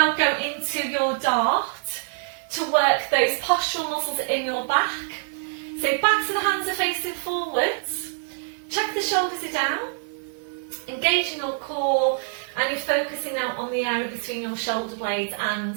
go into your dart to work those postural muscles in your back. So backs of the hands are facing forwards. Check the shoulders are down. Engaging your core, and you're focusing now on the area between your shoulder blades,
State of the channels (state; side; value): silent; left; 62 dB below the other